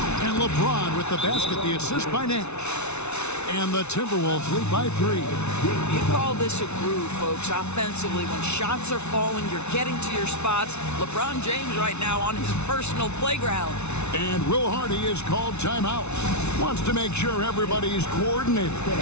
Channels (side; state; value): right; late; 0.81 ms